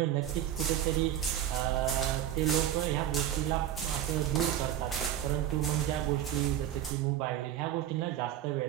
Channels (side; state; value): left; quieter; 11.3 dB